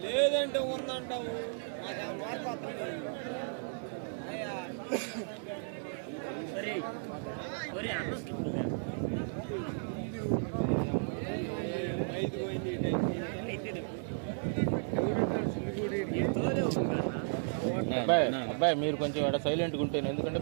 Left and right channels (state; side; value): silent; left; digital silence